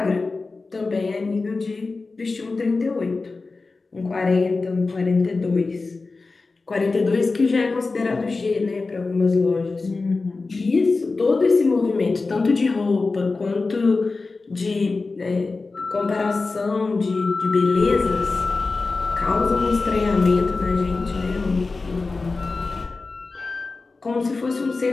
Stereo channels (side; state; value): right; quieter; 3.8 dB